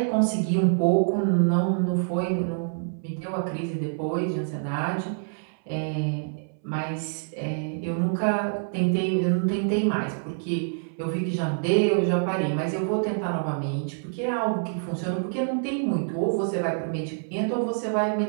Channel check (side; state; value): left; silent; 61 dB below the other